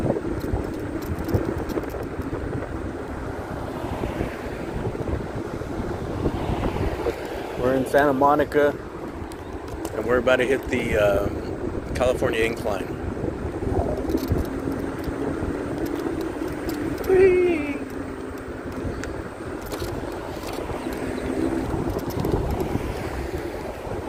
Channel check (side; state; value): both; identical; correlation 1.00